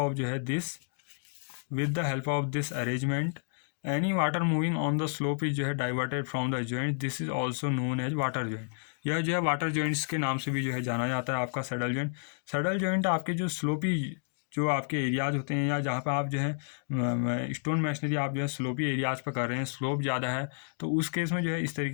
जो है this arrangement any water moving on the slope is जो है diverted from the joint. This is also known as water joint. यह जो है water joints के नाम से भी जो है जाना जाता है आपका सैडल जॉइंट। सैडल जॉइंट आपके जो स्लोपी जो आपके एरियाज होते हैं, या जहाँ पे आप जो है स्टोन मैशनरी आप जो है स्लोपी एरियाज पर कर रहे हैं, स्लोप ज़्यादा है, तो उस केस में जो है इस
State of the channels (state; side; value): silent; right; digital silence